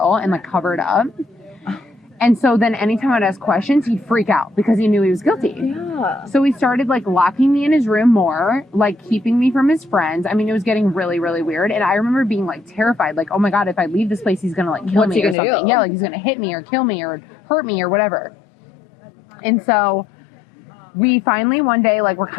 and like cover it up. And so then anytime I'd ask questions, he'd freak out because he knew he was guilty. Yeah. So he started like locking me in his room more, like keeping me from his friends. I mean, it was getting really, really weird. And I remember being like terrified, like, oh my God, if I leave this place, he's going to like kill me or something. Yeah, like he's going to hit me or kill me or hurt me or whatever. And so we finally one day, like, we're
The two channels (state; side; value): drops out; right; at 15.4 s